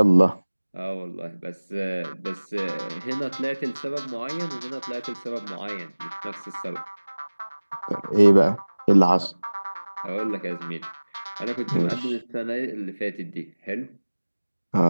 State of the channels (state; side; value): inverted; both; correlation -1.00